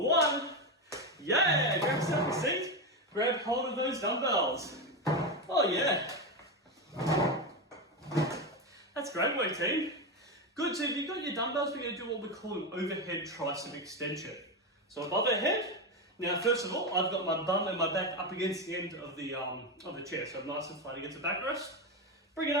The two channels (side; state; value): both; normal; correlation 0.13